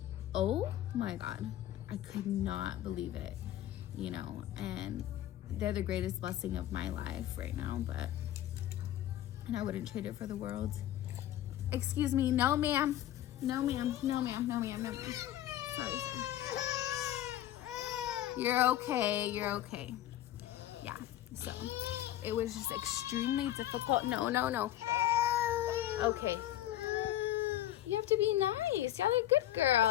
oh my God, I could not believe it, you know. And they're the greatest blessing of my life right now, and I wouldn't trade it for the world. Excuse me, no ma'am, no ma'am, no ma'am, no ma'am, no ma'am. Sorry. You're okay, you're okay. Yeah, so it was just extremely difficult. No. Okay. You have to be nice. Y'all are good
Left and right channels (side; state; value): right; quieter; 13.0 dB